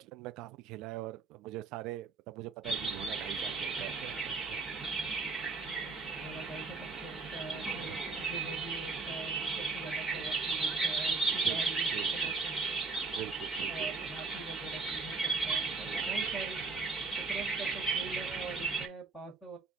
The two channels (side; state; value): left; quieter; 4.1 dB